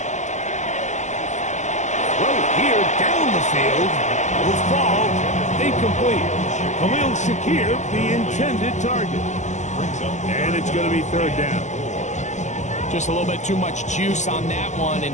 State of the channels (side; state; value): right; late; 0.34 ms